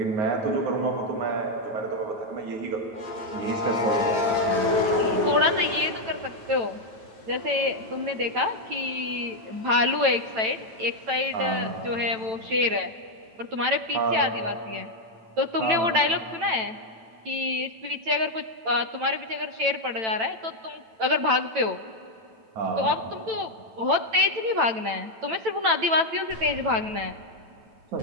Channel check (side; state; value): left; late; 9.0 ms